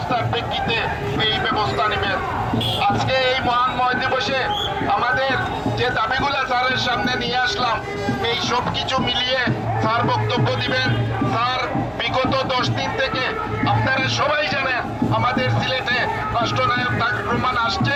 প্রেক্ষিতে এই ব্যবস্থা নেবেন। আজকে এই মহান ময় দিবসে আমাদের যে দাবিগুলো স্যারের সামনে নিয়ে আসলাম, এই সব কিছু মিলিয়ে স্যার বক্তব্য দিবেন। স্যার, বিগত 10 দিন থেকে আপনারা সবাই জানেন আমাদের সিলেটে রাষ্ট্রনায়ক তারেক রহমান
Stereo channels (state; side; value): identical; both; correlation 1.00